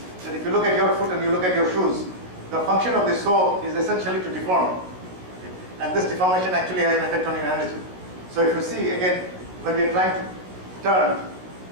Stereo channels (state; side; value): late; left; 16 ms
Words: That if you look at your foot and you look at your shoes, the function of the sole is essentially to deform. And this deformation actually has an effect on your energy. So if you see, again, when we are trying to turn,